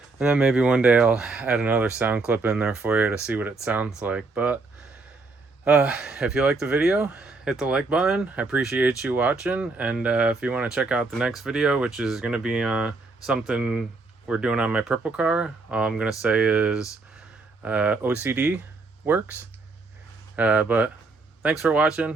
And then maybe one day I'll add another sound clip in there for you to see what it sounds like. But if you like the video, hit the like button. I appreciate you watching. And if you want to check out the next video, which is going to be something we're doing on my purple car, all I'm going to say is OCD works. But thanks for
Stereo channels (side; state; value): left; quieter; 3.6 dB